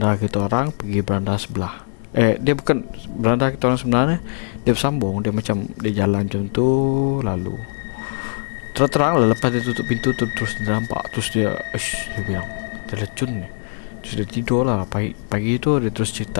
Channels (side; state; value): right; silent; 60 dB below the other